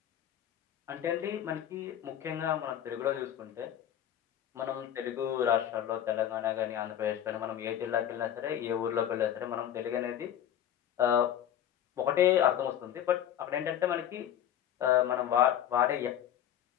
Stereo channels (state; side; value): quieter; right; 10.5 dB